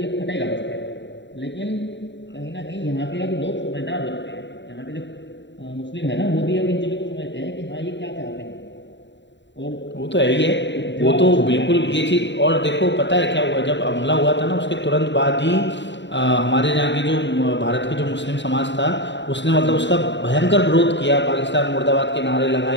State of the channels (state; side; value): late; right; 0.52 ms